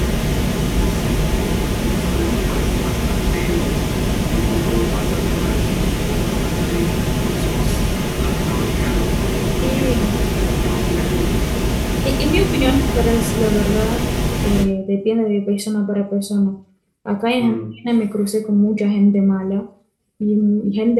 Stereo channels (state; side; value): identical; both; correlation 1.00